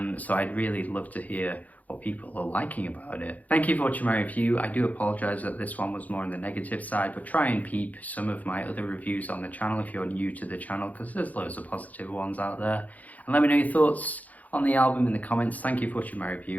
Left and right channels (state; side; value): late; right; 0.077 ms